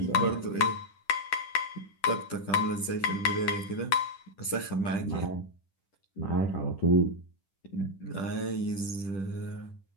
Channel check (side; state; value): right; late; 10 ms